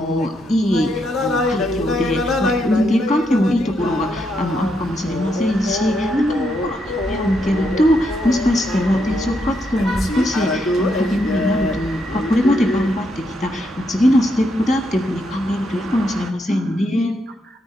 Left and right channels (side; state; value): both; normal; correlation 0.79